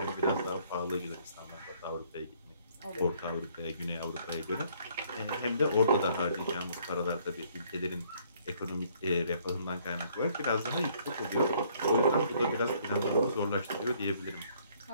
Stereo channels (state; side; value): inverted; both; correlation -0.63